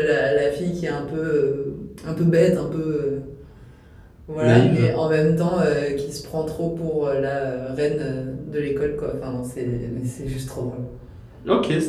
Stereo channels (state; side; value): identical; both; correlation 1.00